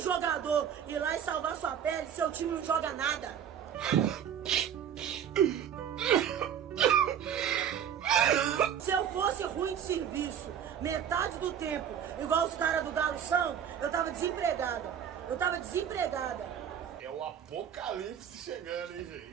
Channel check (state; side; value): quieter; left; 8.8 dB